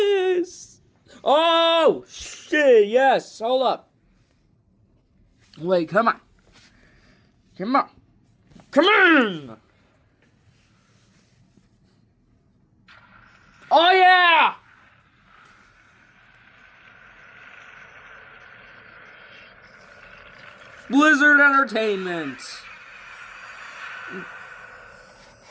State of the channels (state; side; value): identical; both; correlation 1.00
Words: Oh, shit, yes. Hold up. Wait, come on. Come on. Come on. Oh, yeah. Blizzard Entertainment.